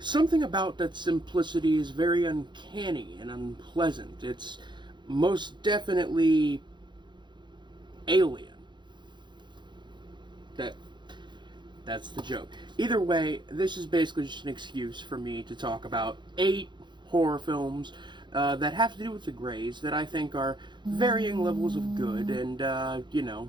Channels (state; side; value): late; left; 0.22 ms